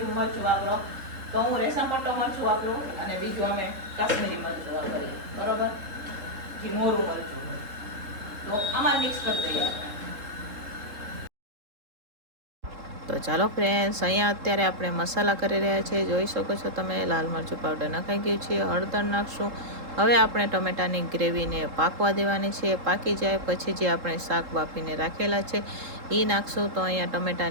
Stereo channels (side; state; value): left; late; 3.7 ms